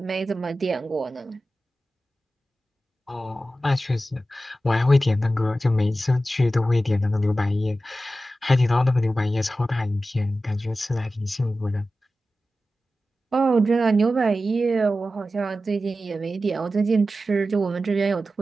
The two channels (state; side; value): normal; both; correlation 0.93